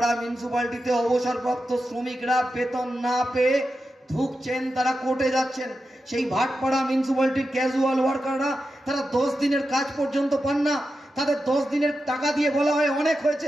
মিউনিসিপ্যালিটিতে অবসরপ্রাপ্ত শ্রমিকরা বেতন না পেয়ে ধুকছেন, তারা কোর্টে যাচ্ছেন। সেই ভাটপাড়া মিউনিসিপ্যালিটির ক্যাজুয়াল ওয়ার্কাররা তারা 10 দিনের কাজ পর্যন্ত পান না, তাদের 10 দিনের টাকা দিয়ে বলা হয় অনেক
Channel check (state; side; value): normal; both; correlation 0.90